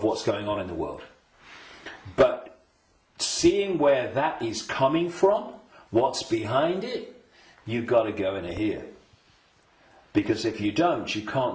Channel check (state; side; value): identical; both; correlation 1.00